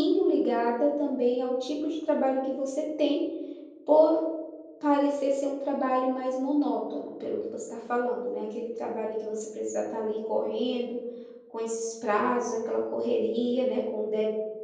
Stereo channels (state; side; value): identical; both; correlation 1.00